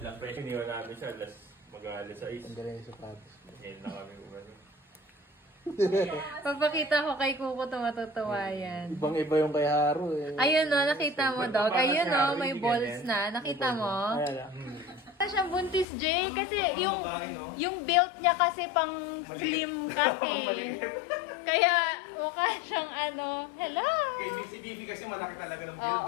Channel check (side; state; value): right; drops out; at 15.9 s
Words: lang, pero iniwan namin siya, mag-alas 6. Ang galing sa sapatos. Ngayon na kami umano. Pagpakita ko kay Kuko ito, matutuwa yan. Ibang-iba yung kay Haro eh. Ayun o, nakita mo, dog. Ayun o, may balls na. Nakita mo? Ayan. Wala siyang buntis, Jay. Kasi yung build niya kasi pang slim kasi. Kaya mukha siyang ano, hello! Si Bibi kasi malaki talaga ng